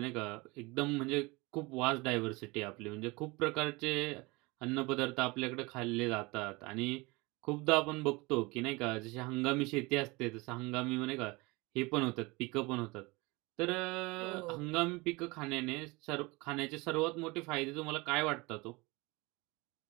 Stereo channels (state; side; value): quieter; left; 24.4 dB